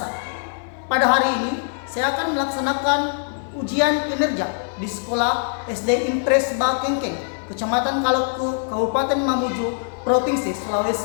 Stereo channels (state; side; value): silent; right; digital silence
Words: Pada hari ini, saya akan melaksanakan ujian kinerja di sekolah SD Impres Bakengkeng, Kecamatan Kaloku, Kabupaten Mamuju, Provinsi